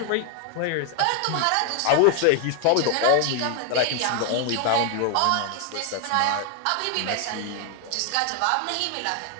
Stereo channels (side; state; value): both; different; correlation 0.00